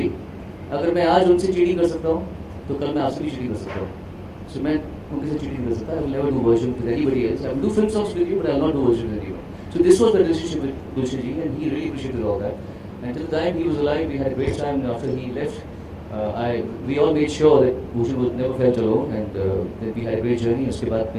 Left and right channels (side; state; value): both; identical; correlation 1.00